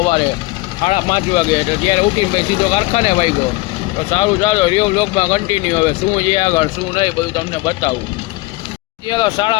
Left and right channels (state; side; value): quieter; right; 21.8 dB